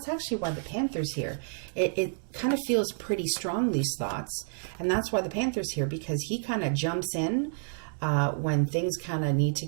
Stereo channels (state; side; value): silent; left; digital silence